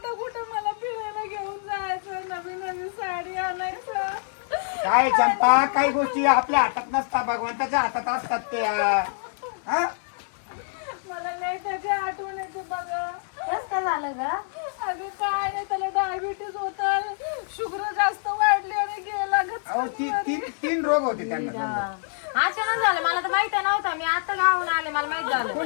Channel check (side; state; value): right; silent; digital silence